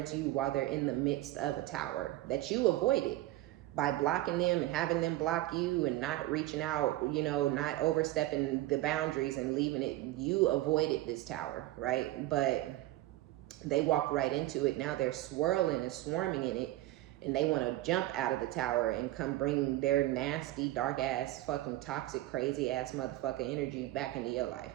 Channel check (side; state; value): left; quieter; 16.3 dB